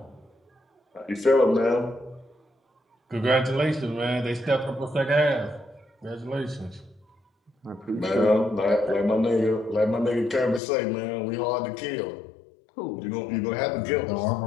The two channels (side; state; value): right; drops out; at 10.6 s